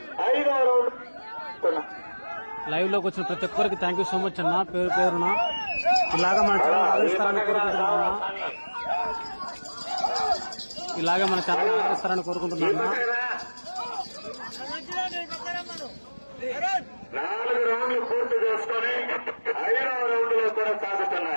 5వ రౌండ్ లైవ్ లోకి వచ్చిన ప్రతి ఒక్కరికి థ్యాంక్ యూ సో మచ్ అన్న. పేరు పేరున ఇలాగా మన ఛానల్ ఆదరిస్తారని కోరుకుంటున్నా. ఇలాగే మన ఛానల్ ఆదరిస్తారని కోరుకుంటున్నా. 4 రౌండ్లు పూర్తి చేసుకుని 5వ రౌండ్ లో కూడా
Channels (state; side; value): inverted; both; correlation -1.00